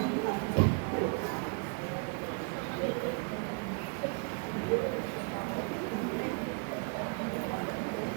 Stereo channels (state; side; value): quieter; left; 37.3 dB